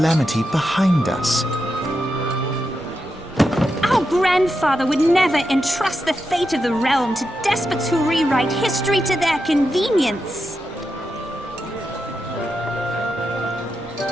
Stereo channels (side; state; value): both; normal; correlation 0.87